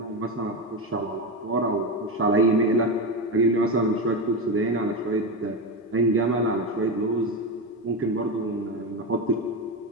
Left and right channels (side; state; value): both; normal; correlation 0.16